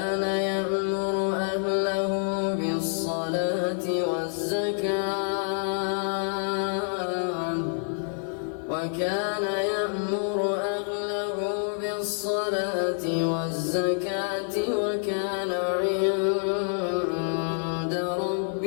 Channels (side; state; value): right; silent; 56 dB below the other